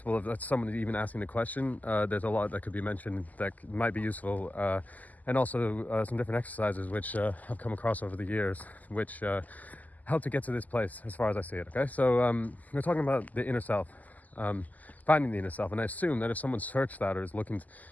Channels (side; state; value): right; late; 0.080 ms